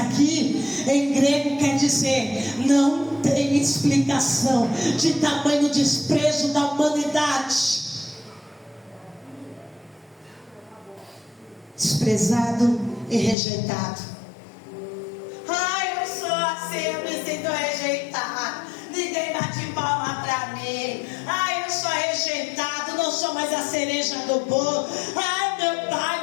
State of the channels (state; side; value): drops out; right; at 13.4 s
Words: em grego quer dizer não tem explicação de tamanho desprezo da humanidade. Desprezado e rejeitado. Ai, eu sou assim, eu me sinto rejeitado. Ninguém bate palma pra mim. Ai, eu sou rejeitado, não sou mais a cereja do bolo. Ai, meu